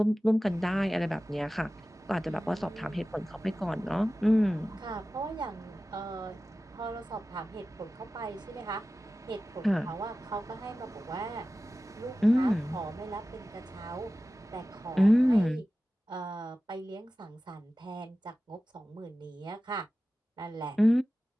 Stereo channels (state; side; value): normal; both; correlation 0.95